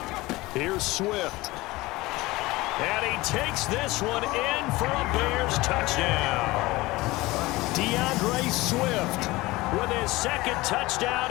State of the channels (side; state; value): right; quieter; 20.3 dB